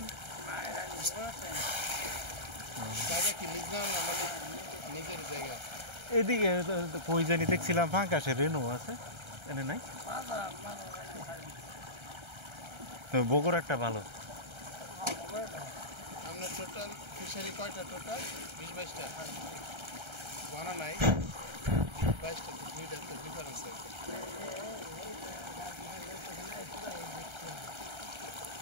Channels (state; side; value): late; left; 1.3 ms